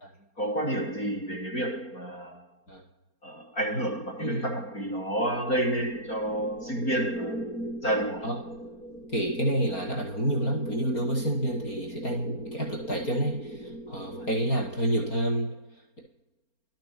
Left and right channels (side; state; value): right; late; 4.3 ms